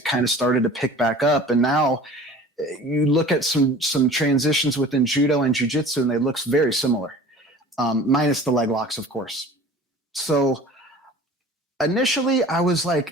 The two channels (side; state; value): both; normal; correlation 0.43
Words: kind of started to pick back up. And now you look at some transitions within judo and jiu-jitsu, and they look very similar, minus the leg locks, of course. So initially I was